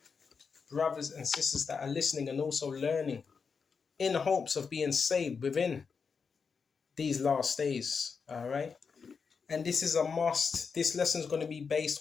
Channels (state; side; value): quieter; right; 5.6 dB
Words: brothers and sisters that are listening and also learning in hopes of being saved within these last days. All right. And this is a must. This lesson is going to be